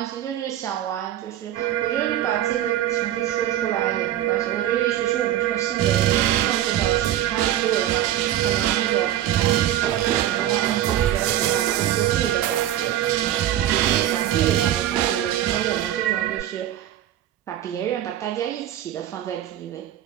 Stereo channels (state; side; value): quieter; left; 12.4 dB